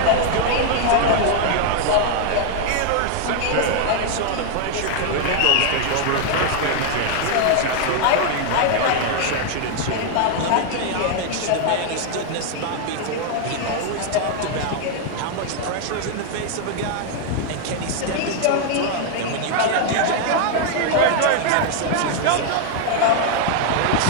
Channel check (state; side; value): different; both; correlation 0.00